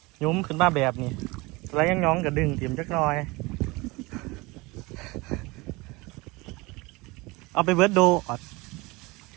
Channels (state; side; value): quieter; left; 23.7 dB